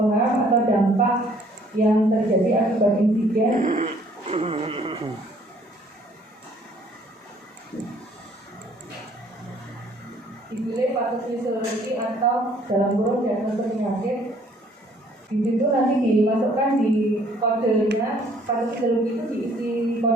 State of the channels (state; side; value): normal; both; correlation 0.60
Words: HAM atau dampak yang terjadi akibat insiden. Dipilih patofisiologi atau dalam kurung diagnosis penyakit. Di situ nanti dimasukkan di kodenya. Patofisiologi itu diisi